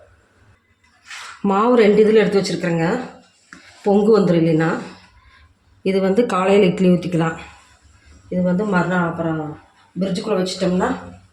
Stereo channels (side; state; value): both; identical; correlation 1.00